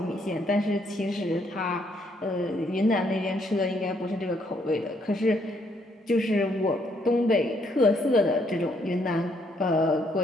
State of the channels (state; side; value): normal; both; correlation 0.71